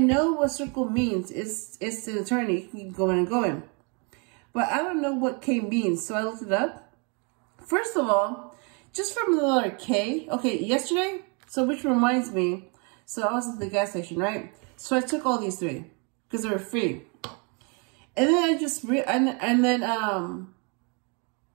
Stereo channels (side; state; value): left; quieter; 33.9 dB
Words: what circle means. It's an eternity. Keep going and going. But I don't know what K means. So I looked it up. First of all, just from the letter K. Okay, yesterday. So which reminds me. So I was at the gas station, right? So I took all these 3 because they were free. And then I just, we